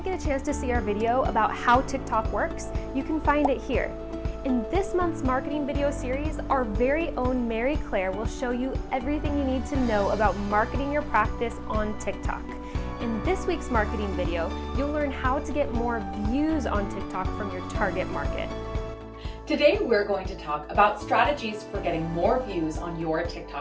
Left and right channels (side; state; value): both; identical; correlation 1.00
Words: get a chance to see our video about how TikTok works, you can find it here. In this month's marketing video series, our very own Mary Claire will show you everything you need to know about marketing your practice on TikTok. In this week's marketing video, you'll learn how to get more views on TikTok from your target market. Today, we're going to talk about strategies for getting more views on your